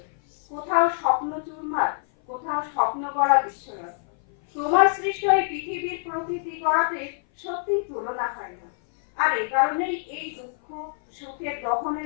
কোথাও স্বপ্ন চুরমার, কোথাও স্বপ্ন গড়া বিশ্বরথ। তোমার সৃষ্ট এই পৃথিবীর প্রকৃতি গড়াতে সত্যিই তুলনা হয় না। আর এ কারণেই এই দুঃখ সুখের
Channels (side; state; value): right; silent; 57 dB below the other